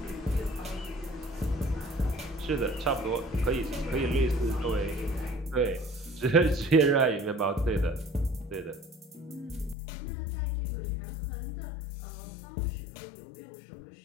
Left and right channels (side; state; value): right; drops out; at 9.8 s